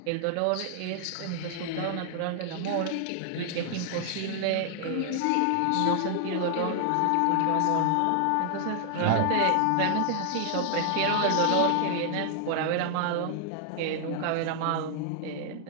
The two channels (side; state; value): both; different; correlation 0.00